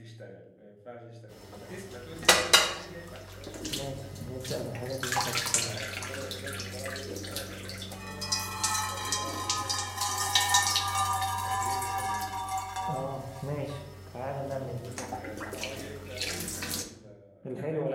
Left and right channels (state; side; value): identical; both; correlation 1.00